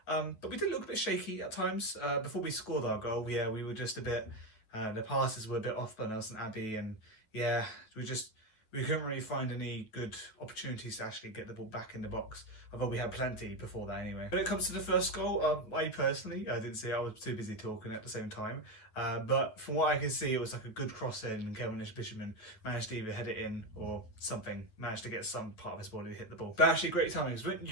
But we did look a bit shaky at times. Before we scored our goal, yeah, we were just a bit, the passes were a bit off by Nelson Abbey, and yeah, we couldn't really find any good opportunities to actually get the ball back in the box, although we had plenty before that anyway. When it comes to the first goal, I personally, I didn't see it, I was too busy talking at the same time, but from what I could see, it was like a good cross in, and Kevin Bishopman managed to either head it in or something, managed to get some part of his body to hit the ball. But actually great timing, because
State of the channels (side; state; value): right; late; 9.2 ms